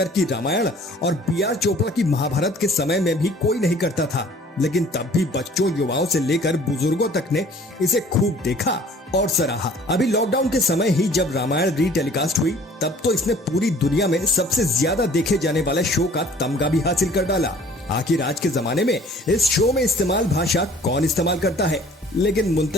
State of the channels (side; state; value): both; normal; correlation 0.52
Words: की रामायण और B.R. चोपड़ा की महाभारत के समय में भी कोई नहीं करता था, लेकिन तब भी बच्चों, युवाओं से लेकर बुजुर्गों तक ने इसे खूब देखा और सराहा। अभी लॉकडाउन के समय ही जब रामायण रीटेलीकास्ट हुई, तब तो इसने पूरी दुनिया में सबसे ज्यादा देखे जाने वाले शो का तमगा भी हासिल कर डाला। आखिर आज के जमाने में इस शो में इस्तेमाल भाषा कौन इस्तेमाल करता है? लेकिन